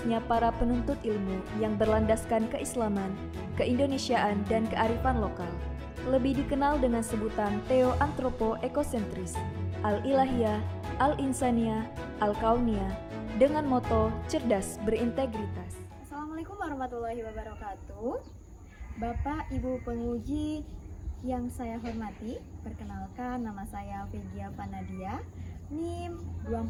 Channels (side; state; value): both; identical; correlation 1.00